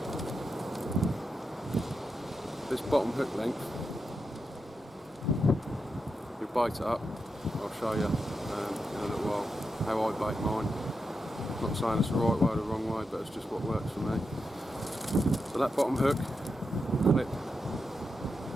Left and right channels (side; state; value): both; normal; correlation 0.87